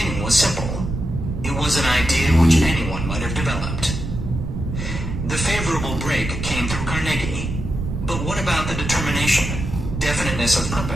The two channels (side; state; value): right; noise; rumble, 5 dB below the sound